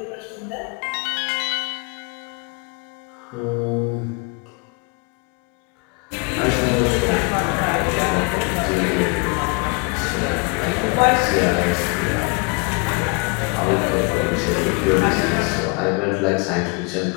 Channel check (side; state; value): right; quieter; 31.7 dB